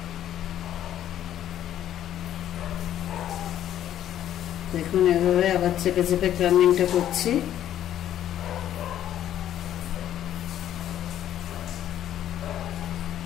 দেখুন এভাবে আবার চেপে চেপে ক্রাম্বিংটা করছি।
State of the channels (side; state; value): right; quieter; 11.4 dB